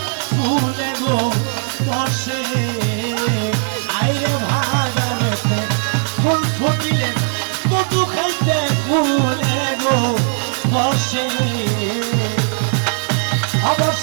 ফুলে গো বসে আইরে বাগানেতে ফুল ফুটিলে মধু খাইতে ফুলে গো বসে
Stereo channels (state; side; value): silent; left; 65 dB below the other